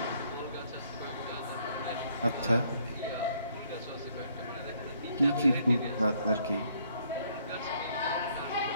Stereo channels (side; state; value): both; inverted; correlation -0.67